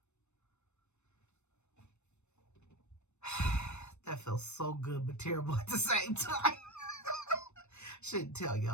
That feels so good but terrible at the same time. Shouldn't tell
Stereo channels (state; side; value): late; right; 0.82 ms